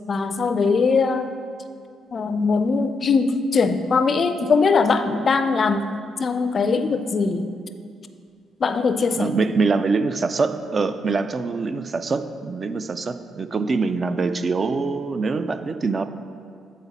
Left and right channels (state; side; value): normal; both; correlation 0.81